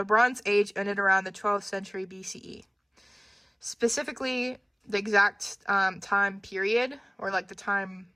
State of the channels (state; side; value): identical; both; correlation 1.00